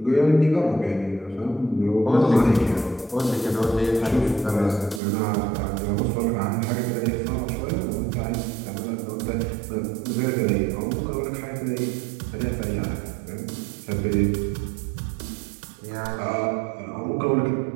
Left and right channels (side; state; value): left; drops out; at 5.0 s